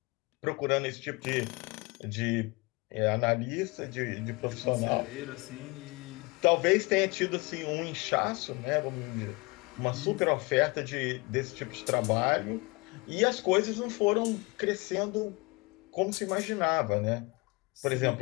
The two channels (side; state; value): right; quieter; 26.1 dB